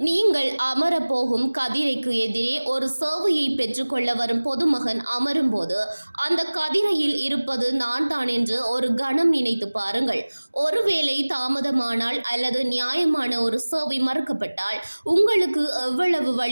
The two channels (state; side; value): inverted; both; correlation -1.00